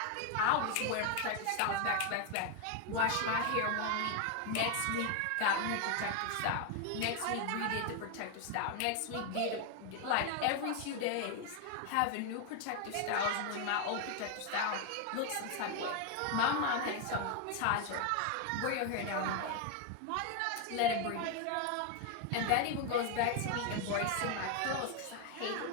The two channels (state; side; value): different; both; correlation 0.01